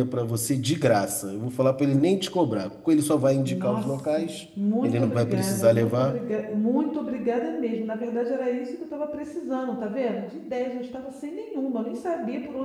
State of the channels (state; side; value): identical; both; correlation 1.00